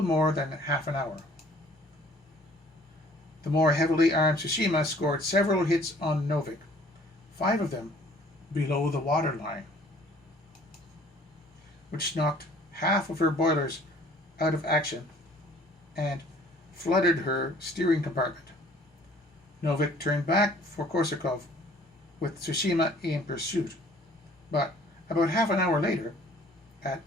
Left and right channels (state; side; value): normal; both; correlation 0.55